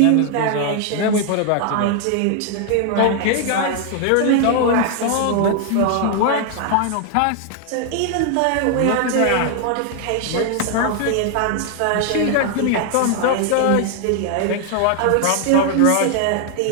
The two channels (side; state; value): both; different; correlation 0.00